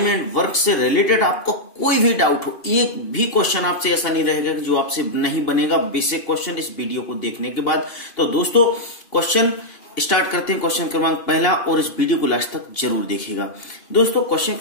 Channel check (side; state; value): right; late; 2.8 ms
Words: एंड वर्क से रिलेटेड आपको कोई भी डाउट हो, एक भी क्वेश्चन आपसे ऐसा नहीं रहेगा कि जो आपसे नहीं बनेगा बेसिक क्वेश्चन इस वीडियो को देखने के बाद। तो दोस्तों क्वेश्चन स्टार्ट करते हैं। क्वेश्चन क्रमांक पहला, और इस वीडियो को लास्ट तक जरूर देखिएगा। दोस्तों क्वेश्चन